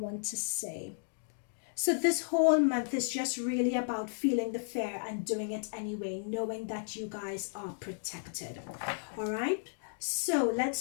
to say? So this whole month is just really about feeling the fear and doing it anyway, knowing that you guys are protected. All right. So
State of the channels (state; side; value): silent; right; digital silence